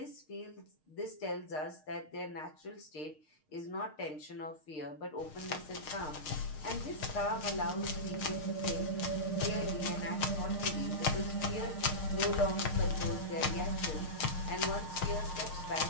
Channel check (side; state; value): right; late; 6.5 ms